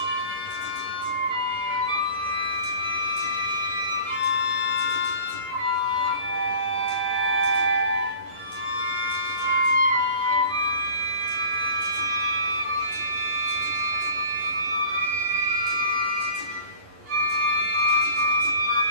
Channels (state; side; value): late; left; 11 ms